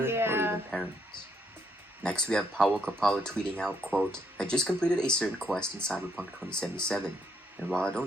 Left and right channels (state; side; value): normal; both; correlation 0.73